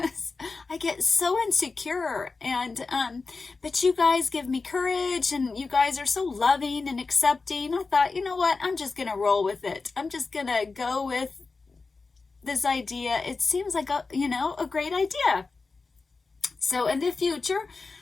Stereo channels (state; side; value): quieter; right; 4.1 dB